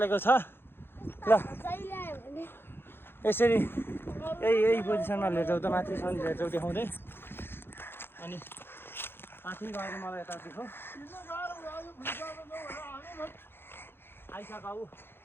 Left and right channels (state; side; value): late; right; 0.11 ms